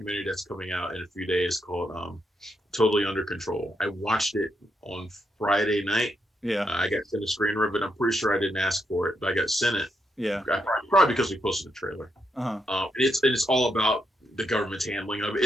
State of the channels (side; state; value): both; normal; correlation 0.80